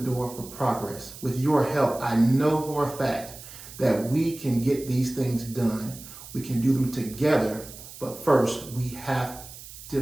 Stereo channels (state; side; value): noise; right; hiss, 15 dB below the sound